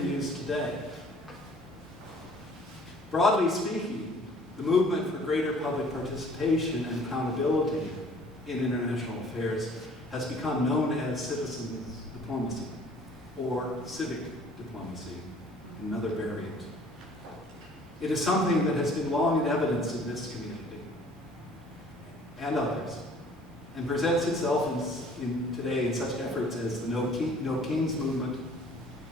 today. Broadly speaking, the movement for greater public participation and accountability in international affairs has become known as citizen diplomacy, or civic diplomacy, another variant. It is something that has been long in evidence in this community and others, and presents itself today in such efforts as the No Kings movement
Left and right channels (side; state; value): both; normal; correlation 0.54